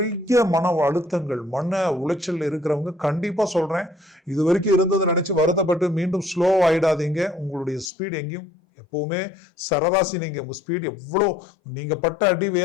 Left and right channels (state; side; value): drops out; right; at 7.9 s